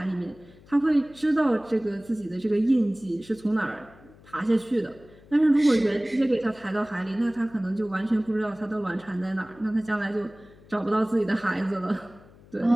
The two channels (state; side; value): noise; left; hum, 24 dB below the sound